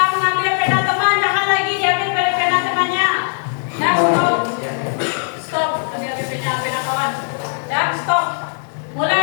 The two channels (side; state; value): right; silent; 65 dB below the other